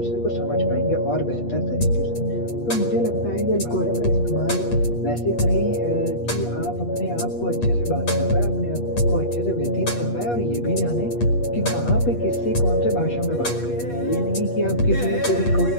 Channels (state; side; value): late; right; 8.3 ms